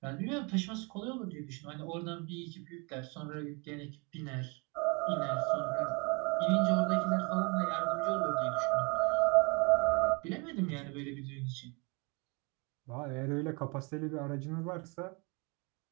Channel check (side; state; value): left; quieter; 30.5 dB